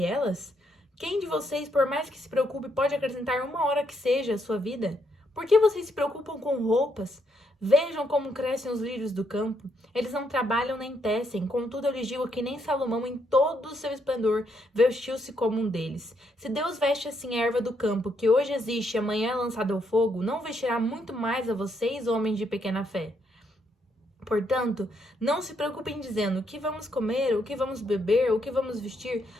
elas? Quem de vocês, por mais que se preocupe, pode acrescentar uma hora que seja à sua vida? Por que vocês se preocupam com roupas? Vejam como crescem os lírios do campo. Eles não trabalham nem tecem. Contudo, eu lhes digo que nem Salomão, em todo o seu esplendor, vestiu-se como um deles. Se Deus veste assim a erva do campo, que hoje existe e amanhã é lançada ao fogo, não vestirá muito mais a vocês, homens de pequena fé? Portanto, não se preocupem dizendo o que vamos comer, o que vamos beber, o que vamos vestir,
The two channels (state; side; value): normal; both; correlation 0.75